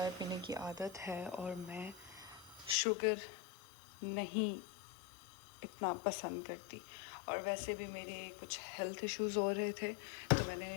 पीने की आदत है और मैं शुगर नहीं इतना पसंद करती। और वैसे भी मेरे कुछ हेल्थ इश्यूज़ हो रहे थे, तो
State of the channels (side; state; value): right; drops out; at 2.8 s